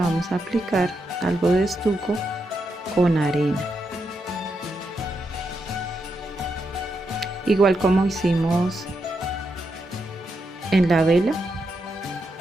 a aplicar algo de estuco con arena, igual como hicimos en la vela.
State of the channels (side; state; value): both; normal; correlation 0.83